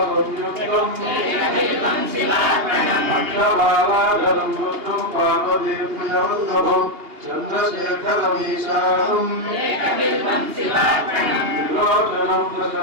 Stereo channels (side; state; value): left; late; 2.8 ms